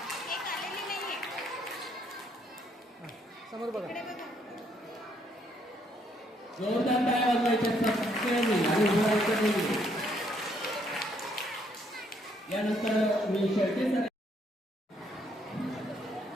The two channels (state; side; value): normal; both; correlation 0.70